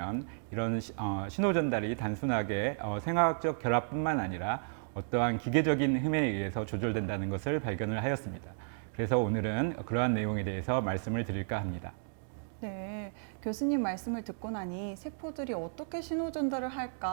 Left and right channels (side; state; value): left; silent; digital silence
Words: 이런 신호 전달이 단순하게 생화학적 결합뿐만 아니라 어떠한 기계적인 힘에 의해서 조절된다는 것을 발견을 하였습니다. 그래서 오늘은 그러한 내용에 대해서 말씀을 드릴까 합니다. 네, 교수님 말씀을 듣고 나니 세포들이 어떻게 신호 전달을